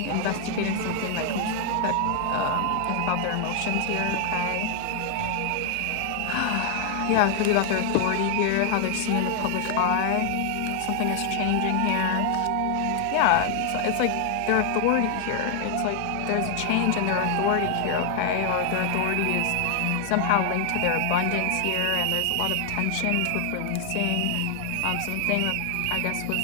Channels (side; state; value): both; different; correlation 0.00